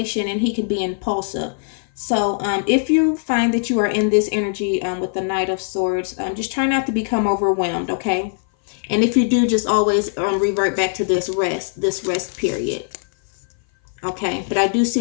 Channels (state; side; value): silent; right; 58 dB below the other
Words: and he can be impulsive. So if you find that you are in this energy with the Knight of Swords, just try not to become overwhelmed, okay? And if you do, just always revert back to this rest period. Okay, but I do